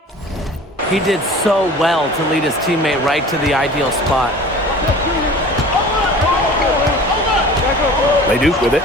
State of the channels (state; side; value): normal; both; correlation 0.42